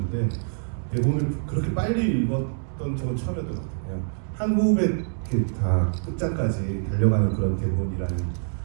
대본을 그렇게 빨리 읽었던 적은 처음이었던 것 같아요. 한 호흡에 이렇게 다 끝장까지 달려가는 그런 대본이라는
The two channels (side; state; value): left; silent; digital silence